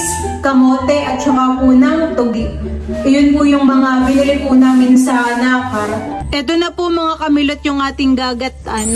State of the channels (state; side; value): identical; both; correlation 1.00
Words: kamote at saka po ng tugi. Iyon po yung mga binili po namin sa Nakar. Ito na po mga kamilot yung ating